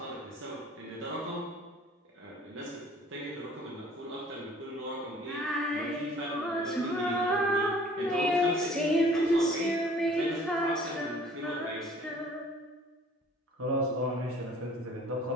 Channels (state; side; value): normal; both; correlation 0.53